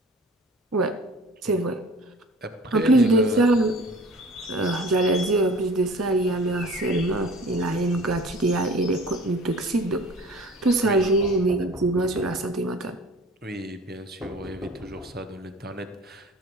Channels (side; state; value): both; normal; correlation 0.45